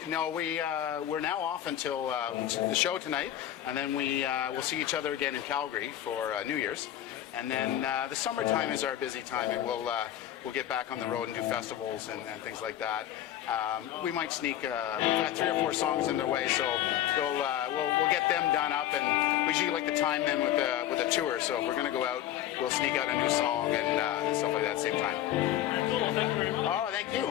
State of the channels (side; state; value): right; quieter; 12.0 dB